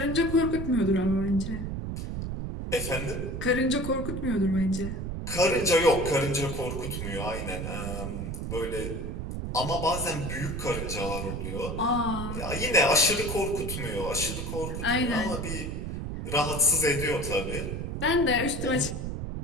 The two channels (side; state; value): right; noise; rumble, 5 dB below the sound